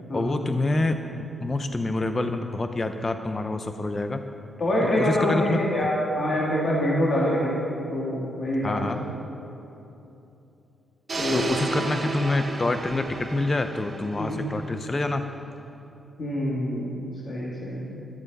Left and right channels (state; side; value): normal; both; correlation 0.82